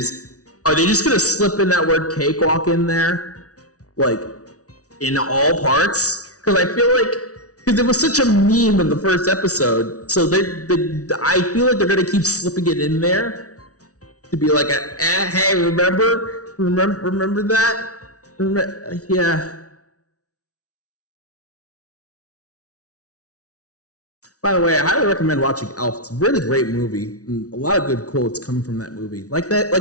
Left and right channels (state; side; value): late; right; 0.67 ms